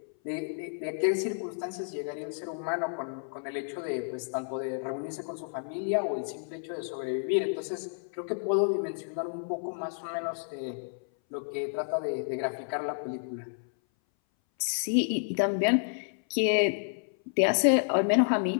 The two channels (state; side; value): silent; right; 57 dB below the other